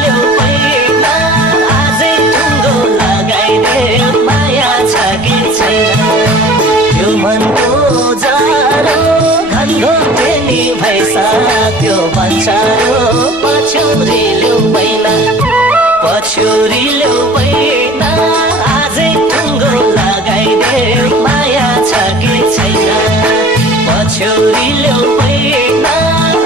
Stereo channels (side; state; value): right; noise; rumble, 26 dB below the sound